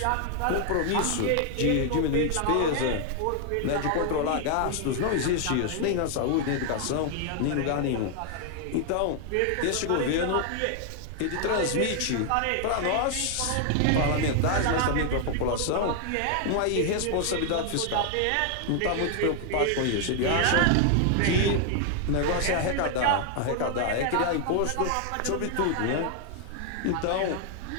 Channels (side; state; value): both; different; correlation 0.00